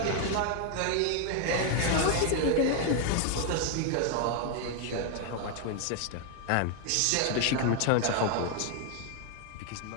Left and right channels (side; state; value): both; different; correlation 0.00